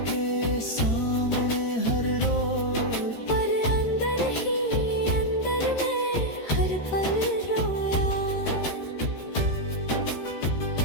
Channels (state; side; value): late; right; 13 ms